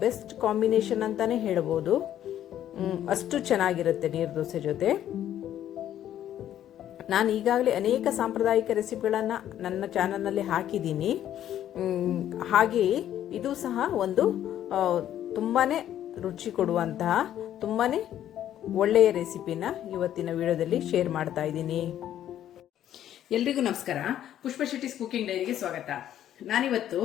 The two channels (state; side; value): quieter; right; 11.3 dB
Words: ಬೆಸ್ಟ್ ಕಾಂಬಿನೇಷನ್ ಅಂತಾನೆ ಹೇಳಬಹುದು. ಅಷ್ಟು ಚೆನ್ನಾಗಿರುತ್ತೆ ನೀರ್ ದೋಸೆ ಜೊತೆ. ನಾನು ಈಗಾಗಲೇ ಅನೇಕ ಸಾಂಪ್ರದಾಯಿಕ ರೆಸಿಪಿಗಳನ್ನು ನನ್ನ ಚಾನಲ್ನಲ್ಲಿ ಹಾಕಿದ್ದೀನಿ. ಹಾಗೆಯೇ ಇದು ಸಹ ಒಂದು ತುಂಬಾನೇ ರುಚಿ ಕೊಡುವಂತಹ ತುಂಬಾನೇ ಒಳ್ಳೆಯ ರೆಸಿಪಿನ ಇವತ್ತಿನ ವಿಡಿಯೋದಲ್ಲಿ ಶೇರ್ ಮಾಡ್ತಾ ಇದ್ದೀನಿ. ಎಲ್ರಿಗೂ ನಮಸ್ಕಾರ. ಪುಷ್ಪ ಶೆಟ್ಟಿಸ್ ಕುಕಿಂಗ್ ಡೈರಿಗೆ ಸ್ವಾಗತ. ನಾನಿವತ್ತು